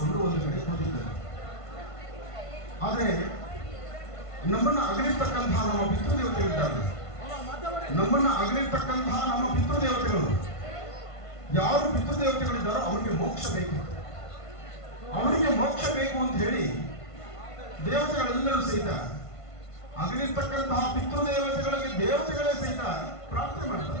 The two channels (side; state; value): right; late; 1.5 ms